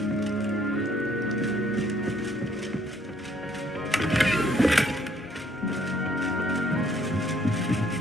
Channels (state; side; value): normal; both; correlation 0.65